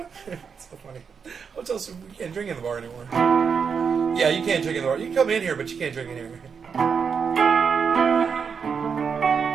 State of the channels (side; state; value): left; quieter; 6.2 dB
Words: So funny. Hotel says we can't drink in the bar anymore. Yeah, you can't drink in the bar. You can come in here, but you can't drink in here.